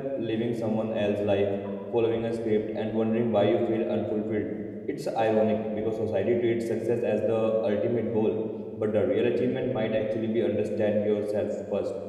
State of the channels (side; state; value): both; identical; correlation 1.00